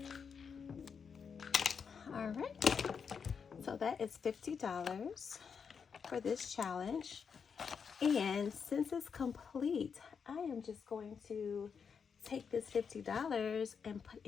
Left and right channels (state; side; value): quieter; right; 6.3 dB